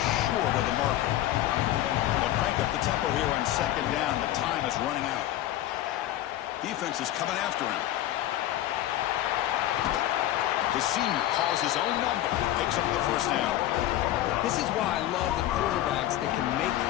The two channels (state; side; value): quieter; right; 13.7 dB